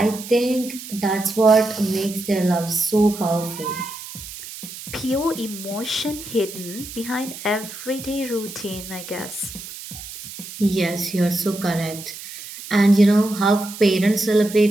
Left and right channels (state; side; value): noise; right; hiss, 12 dB below the sound